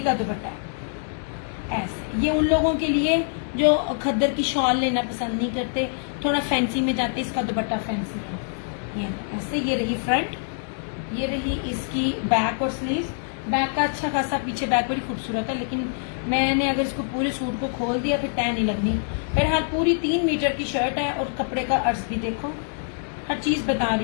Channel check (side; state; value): right; silent; digital silence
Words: दुपट्टा है ऐसे। ये उन लोगों के लिए जो खद्दर की शॉल लेना पसंद नहीं करते, थोड़ा फैंसी में जाते, इसका दुपट्टा फैंसी है ये ऐसे। ये रही फ्रंट, ये रही इसकी बैक और स्लीव। बैक का अच्छा खासा पीछे बैक बड़ी खूबसूरत है, लेकिन मैंने अगर इसको पूरे सूट को खोल दिया फिर टैन नहीं लगनी। बहरहाल पूरी 3 मीटर की शर्ट है और कपड़े का अर्ज भी देखो, हर चीज बता